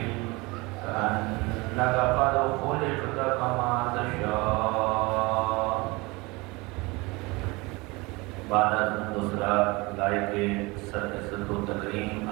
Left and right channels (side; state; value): left; quieter; 24.5 dB